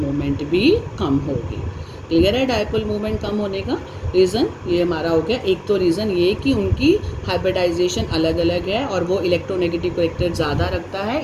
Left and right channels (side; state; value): both; identical; correlation 1.00